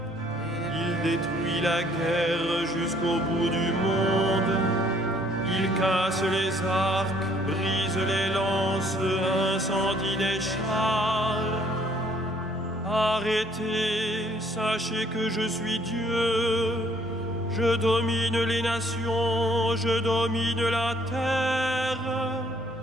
Il détruit la guerre jusqu'au bout du monde. Il casse les arcs, brise les lances, incendie les chars. Arrêtez, sachez que je suis Dieu. Je domine les nations, je domine la terre.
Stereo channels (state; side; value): normal; both; correlation 0.62